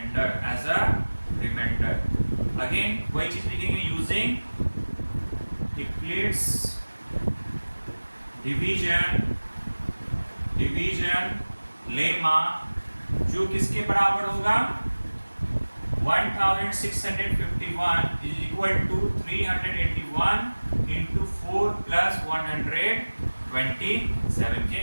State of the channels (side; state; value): both; inverted; correlation -1.00